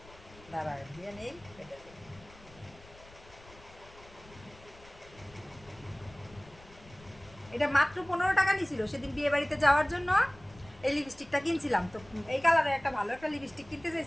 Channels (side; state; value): left; noise; rumble, 22 dB below the sound